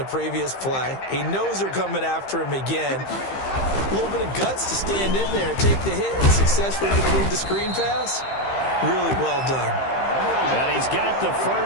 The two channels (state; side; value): late; right; 15 ms